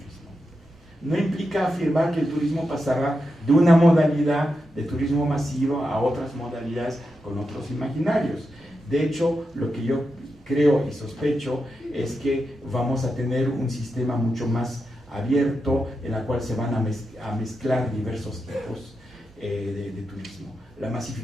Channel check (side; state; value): both; normal; correlation 0.87